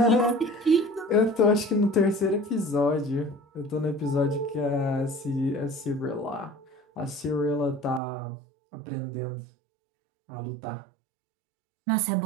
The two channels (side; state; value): left; drops out; at 8.0 s